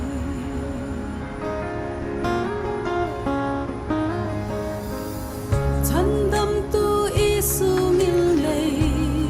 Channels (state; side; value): identical; both; correlation 1.00